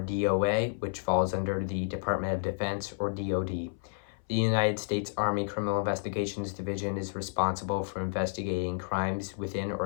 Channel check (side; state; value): right; silent; 57 dB below the other